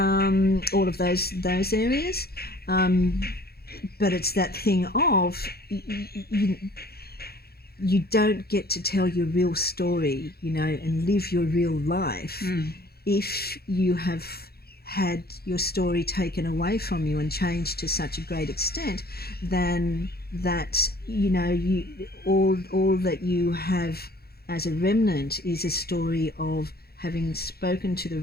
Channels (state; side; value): late; right; 0.46 ms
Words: of those areas, but it's that thing of you don't get to tell your real story, and live your real life if you have had your story taken away from you and changed to such a great extent then that, all that you have as a remnant is a story of having spoken to the